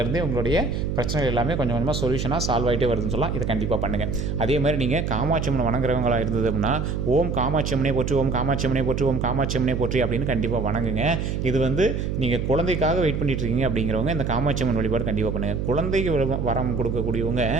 உங்களுடைய பிரச்சனைகள் எல்லாமே கொஞ்சம் கொஞ்சமாக சொல்யூஷனாக சால்வ் ஆகிட்டே வருதுன்னு சொல்லலாம். இதை கண்டிப்பாக பண்ணுங்கள். அதே மாதிரி நீங்கள் காமாட்சி அம்மன் வணங்குறவங்களாக இருந்தது அப்படின்னா ஓம் காமாட்சி அம்மனே போற்றி, ஓம் காமாட்சி அம்மனே போற்றி, ஓம் காமாட்சி அம்மனே போற்றி அப்படின்னு கண்டிப்பாக வணங்குங்க. இது வந்து நீங்கள் குழந்தைக்காக வெயிட் பண்ணிட்டு இருக்கீங்க அப்படிங்கிறவங்க இந்த காமாட்சி அம்மன் வழிபாடு கண்டிப்பாக பண்ணுங்கள். குழந்தைக்கு வரம் கொடுக்கக்கூடியவங்க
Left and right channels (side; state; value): right; noise; hum, 2 dB below the sound